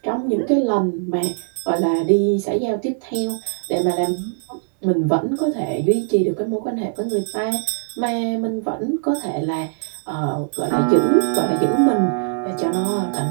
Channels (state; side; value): silent; left; digital silence